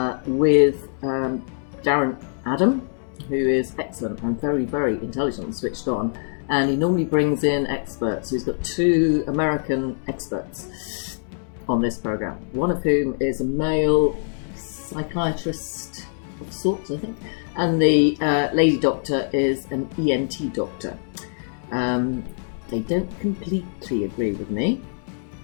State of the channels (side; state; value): right; silent; digital silence